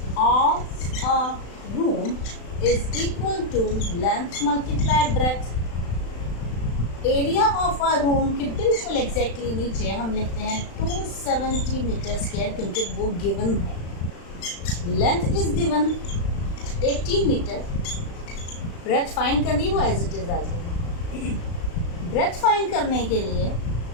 of a room is equal to length multiply breadth. Area of a room के बिल्कुल एग्जैक्टली नीचे हम लिखते हैं 270 मीटर स्क्वायर क्योंकि वो गिवन है. Length is given 80 metre. Breadth find करनी वो एज इट इज आ जाएगी. ब्रेथ फाइंड करने के लिए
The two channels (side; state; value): right; late; 35 ms